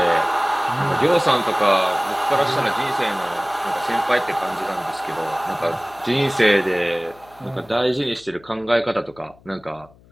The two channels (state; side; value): noise; left; hum, 27 dB below the sound